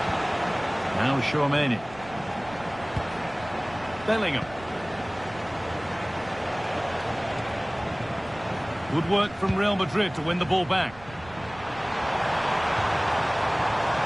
Now Chouameni. Bellingham. Good work from Real Madrid to win the ball back.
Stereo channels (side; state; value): right; noise; rumble, 19 dB below the sound